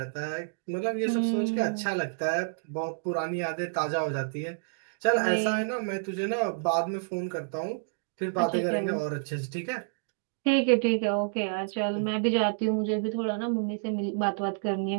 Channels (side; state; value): left; silent; digital silence